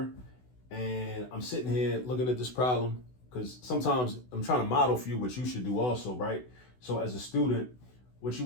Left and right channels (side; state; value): right; late; 16 ms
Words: and I'm sitting here looking at this problem because sometimes I'm trying to model for you what you should do also, right? So as a student, what you